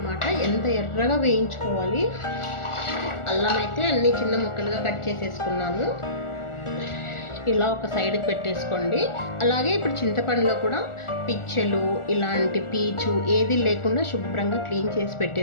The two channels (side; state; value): right; late; 1.4 ms